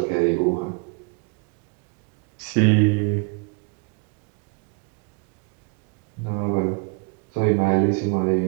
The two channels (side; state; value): left; quieter; 33.3 dB